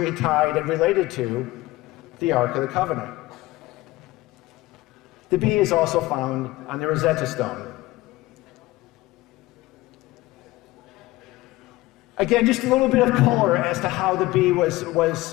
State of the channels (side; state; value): right; quieter; 18.6 dB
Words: tied and related to the Ark of the Covenant. The bee is also found on the Rosetta Stone. Again, just a little bit of color as to how the bee